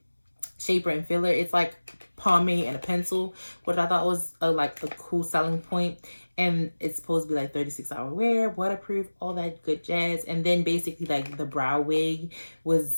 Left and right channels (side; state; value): both; inverted; correlation -1.00